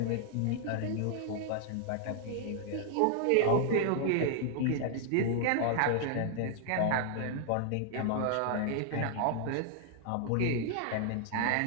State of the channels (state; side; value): different; both; correlation -0.01